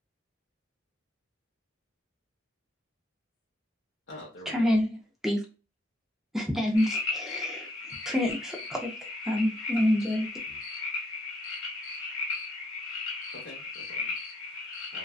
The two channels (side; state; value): both; normal; correlation 0.74